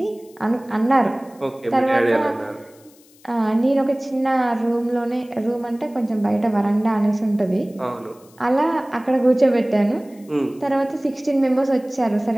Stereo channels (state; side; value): noise; left; hiss, 28 dB below the sound